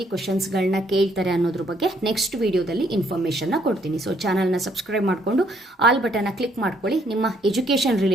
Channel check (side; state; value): both; normal; correlation 0.68